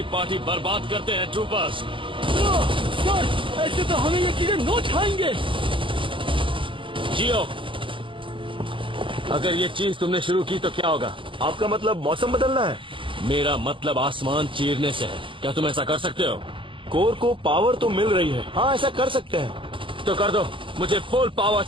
पार्टी बर्बाद करते हैं ट्रूपर्स। सर, ऐसे तो हमें ये कीड़े नोच खाएंगे। जियो, अगर ये चीज तुमने शुरू की तो क्या होगा? आपका मतलब मौसम बदलना है? मेरा मतलब आसमान चीरने से है। क्या तुम ऐसा कर सकते हो? कोर को पावर तो मिल रही है। हाँ, ऐसा कर सकते हैं। तो कर दो, मुझे फुल पावर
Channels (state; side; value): late; left; 0.25 ms